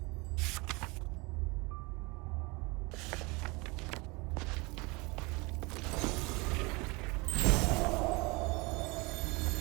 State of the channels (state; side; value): quieter; left; 26.3 dB